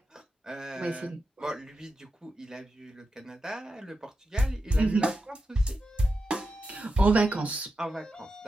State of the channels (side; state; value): both; normal; correlation 0.89